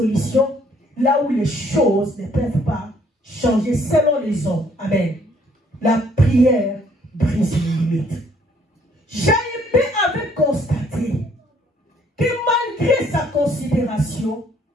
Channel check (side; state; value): both; normal; correlation 0.64